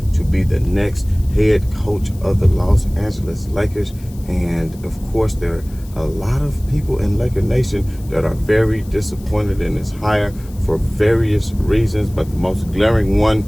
to be the next head coach of the Los Angeles Lakers. And of course, there are a lot of people in Laker Nation that are very disappointed in this hire for various reasons. But the most glaring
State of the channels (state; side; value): noise; left; hiss, 24 dB below the sound